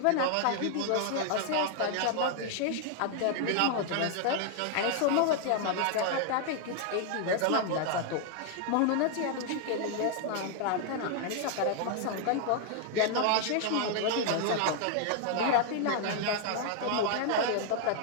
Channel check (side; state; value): both; different; correlation 0.00